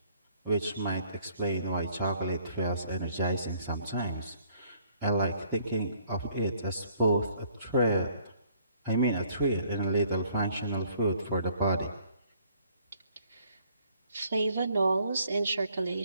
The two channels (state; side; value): inverted; both; correlation -0.62